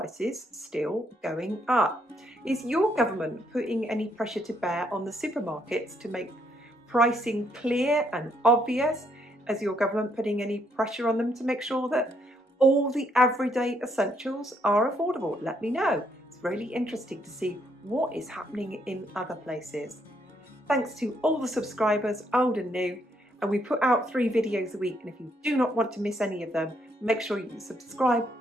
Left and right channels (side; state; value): both; normal; correlation 0.72